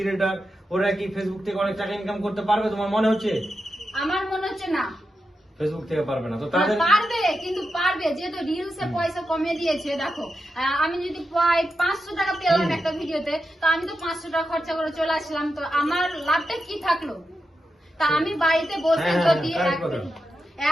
ওরা কি ফেসবুক থেকে অনেক টাকা ইনকাম করতে পারবে তোমার মনে হচ্ছে? আমার মনে হচ্ছে না, ফেসবুক থেকে পারবে না। তো তাদের পারবে, কিন্তু পারবে যেহেতু রিলসে পয়সা কমিয়ে দিয়েছে। দেখো আমি যদি প্রায় 500 টাকা পেলাম একটা ভিডিওতে, তো আমি তো 500 টাকা খরচা করে চলে আসলাম, তো আমার লাভটা কি থাকলো? তা আমি বাড়িতে বসে যদি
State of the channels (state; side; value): normal; both; correlation 0.88